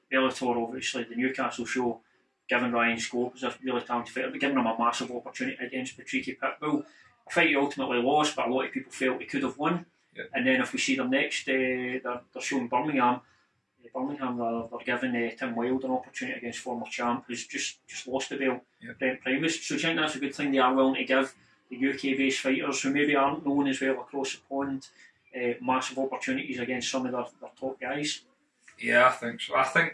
Bellator, obviously the Newcastle show, giving Ryan Scope as a really talented fighter, but giving him a massive opportunity against Patricky Pitbull. A fight he ultimately lost, but a lot of people felt he could have won. Yeah. And then if we see them next, they're showing Birmingham. They're giving Tim Wilde an opportunity against former champ who's just lost the belt, Brent Primus. So do you think that's a good thing they are willing to give the UK-based fighters who maybe aren't known as well across the pond massive opportunities against some of their top guys? Yeah, I think so. I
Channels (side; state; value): both; identical; correlation 1.00